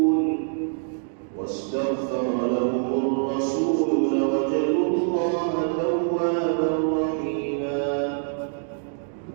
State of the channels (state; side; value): silent; left; digital silence